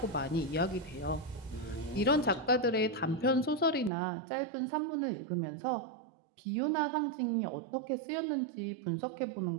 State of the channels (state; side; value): drops out; left; at 3.9 s